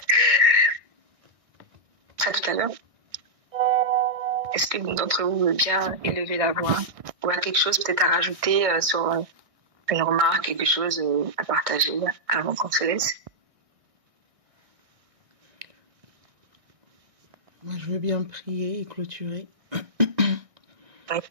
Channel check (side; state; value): left; late; 1.6 ms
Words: À tout à l'heure. Est-ce que l'une d'entre vous veut bien élever la voix ou a quelque chose peut-être à rajouter sur une remarque, quelque chose à partager avant qu'on se laisse? Moi, je veux bien prier et clôturer. Oui.